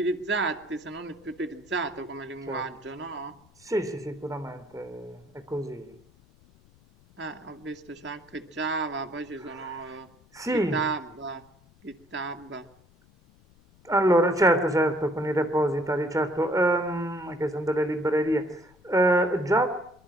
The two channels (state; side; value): noise; left; rumble, 29 dB below the sound